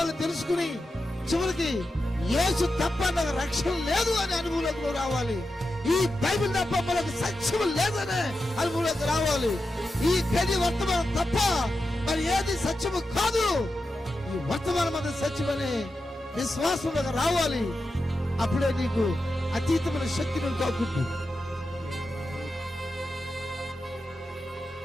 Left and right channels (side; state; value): both; normal; correlation 0.90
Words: తెలుసుకుని చివరికి యేసు తప్ప నాకు రక్షణ లేదు అనే అనుభవంలోకి రావాలి. ఈ బైబిల్ తప్ప మనకు సత్యం లేదనే అనుభవంలోకి రావాలి. ఈ గది వర్తమానం తప్ప మరి ఏది సత్యము కాదు, ఈ వర్తమానం అది సత్యమనే విశ్వాసంలోకి రావాలి. అప్పుడే నీకు అతీతమైన శక్తి నువ్వు తాకుంటుంది.